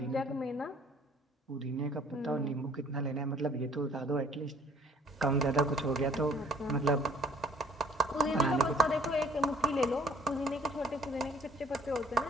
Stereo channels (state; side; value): normal; both; correlation 0.57